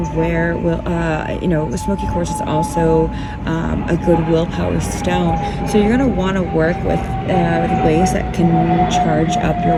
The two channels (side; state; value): both; identical; correlation 1.00